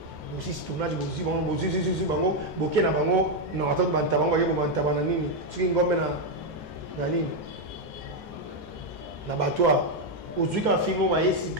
Bosi tournage bosi bango boké na bango non attends banta bango yebo banta bana nini soki ngombe na nini na batwa ozwi ka film ma yesi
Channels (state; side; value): normal; both; correlation 0.03